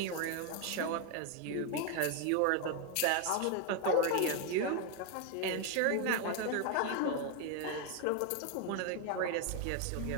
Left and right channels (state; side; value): different; both; correlation 0.01